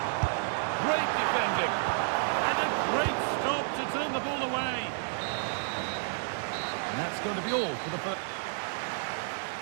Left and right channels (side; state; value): left; silent; digital silence